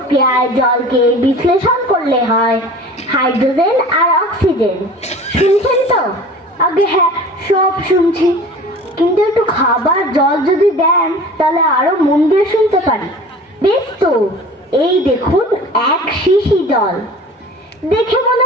জলকে বিশ্লেষণ করলে হয় হাইড্রোজেন আর অক্সিজেন। শুনছেন তো? আগে হ্যাঁ, সব শুনছি, কিন্তু একটু খাবার জল যদি দেন তাহলে আরো মন দিয়ে শুনতে পারি। বেশ তো, এই দেখুন 1 শিশি জল। দেখে মনে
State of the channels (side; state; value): both; normal; correlation 0.41